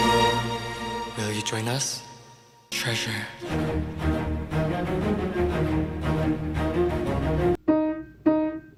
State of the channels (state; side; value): identical; both; correlation 1.00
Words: Will you join us? Treasure.